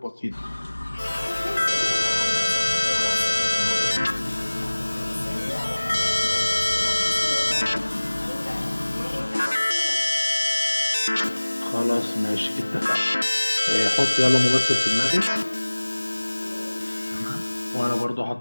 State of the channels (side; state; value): both; inverted; correlation -1.00